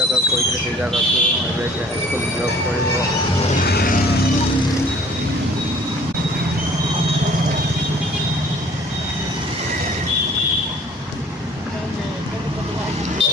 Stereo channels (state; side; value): normal; both; correlation 0.53